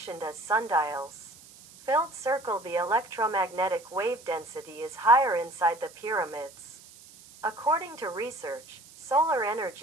as sundials. Filled circle. The electromagnetic wave density is higher inside the pyramids. According to research, solar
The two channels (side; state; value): right; noise; hiss, 21 dB below the sound